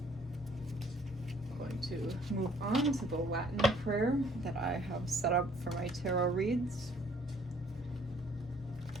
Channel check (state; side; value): normal; both; correlation 0.60